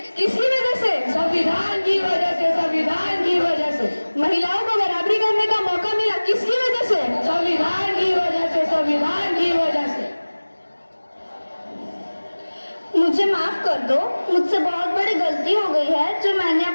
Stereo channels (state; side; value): inverted; both; correlation -1.00